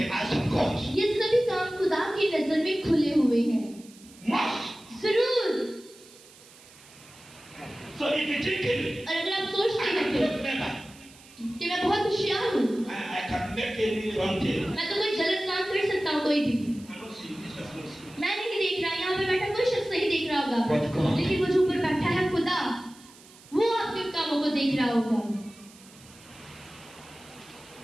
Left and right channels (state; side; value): noise; right; hiss, 23 dB below the sound